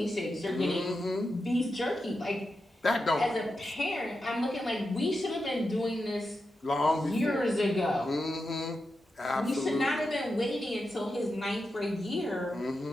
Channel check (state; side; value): normal; both; correlation 0.89